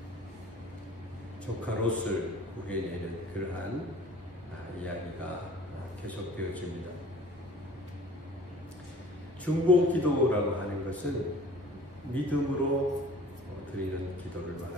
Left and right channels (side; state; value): both; normal; correlation 0.47